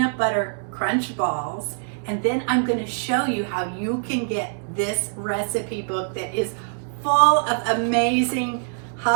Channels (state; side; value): silent; left; digital silence